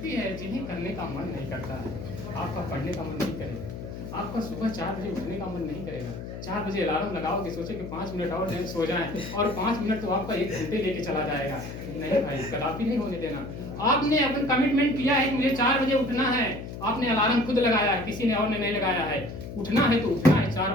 है जिन्हें करने का मन नहीं करता है। आपका पढ़ने का मन नहीं करेगा, आपका सुबह 4 बजे उठने का मन नहीं करेगा। 4 बजे अलार्म लगाओगे, सोचे कि 5 मिनट और सो जाएं, और 5 मिनट तो आपका 1 घंटे लेके चला जाएगा। नहीं भाई, कदापि नहीं होने देना। आपने अपन कमिटमेंट किया है कि मुझे 4 बजे उठना है, आपने अलार्म खुद लगाया, किसी ने और ने नहीं लगाया है। उठना है तो उठना है,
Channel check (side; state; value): left; noise; hum, 9 dB below the sound